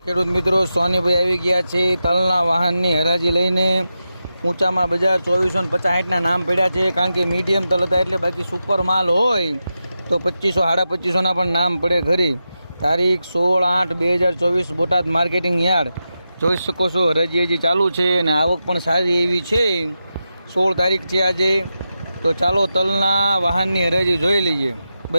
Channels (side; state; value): both; inverted; correlation -0.90